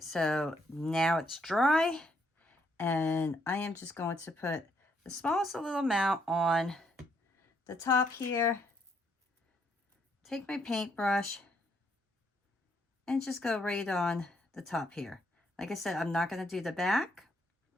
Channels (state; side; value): normal; both; correlation 0.72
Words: so now it's dry, and I am just going to put the smallest little amount on the top here. Take my paintbrush and just go right on the top here. Like I said, I'm not going to do the back.